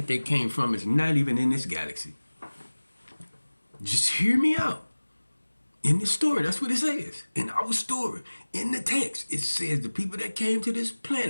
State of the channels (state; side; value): inverted; both; correlation -1.00